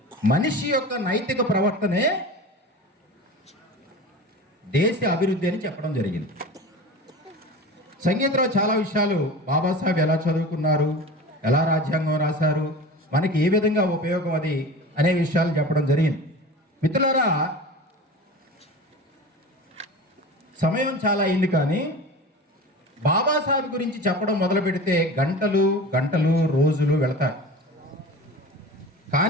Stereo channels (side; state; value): both; normal; correlation 0.34